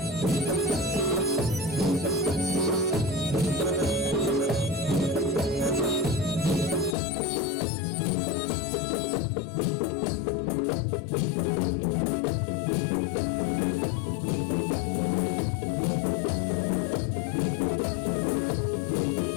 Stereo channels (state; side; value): drops out; right; at 7.0 s